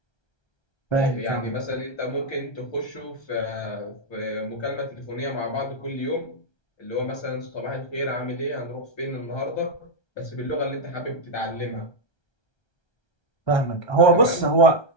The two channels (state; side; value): late; right; 1.3 ms